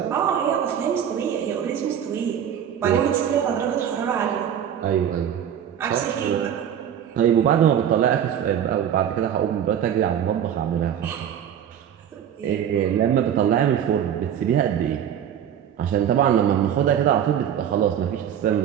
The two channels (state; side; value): quieter; left; 9.4 dB